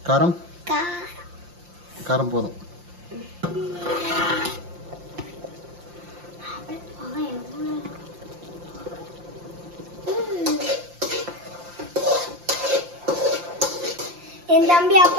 காரம் காரம் போதும். என் தம்பி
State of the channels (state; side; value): late; left; 5.7 ms